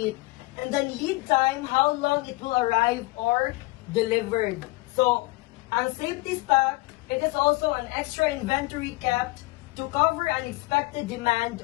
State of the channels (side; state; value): right; quieter; 22.5 dB